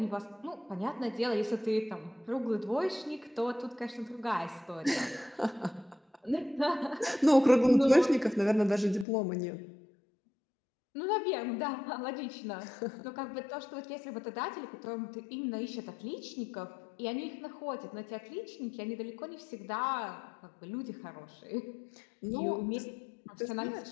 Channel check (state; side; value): drops out; right; at 9.1 s